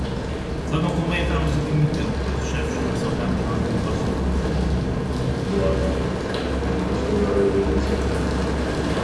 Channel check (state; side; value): identical; both; correlation 1.00